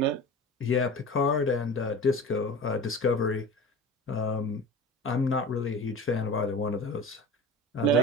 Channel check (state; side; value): normal; both; correlation 0.35